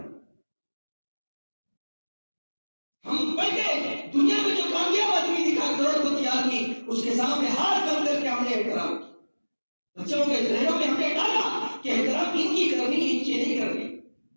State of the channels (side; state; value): both; inverted; correlation -1.00